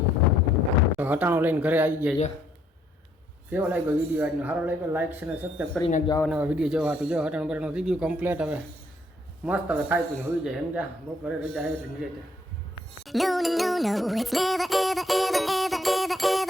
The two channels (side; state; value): both; normal; correlation 0.69